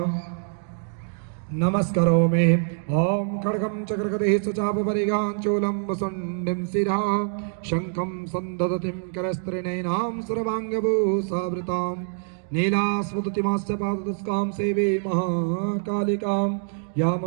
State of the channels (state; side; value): silent; left; 62 dB below the other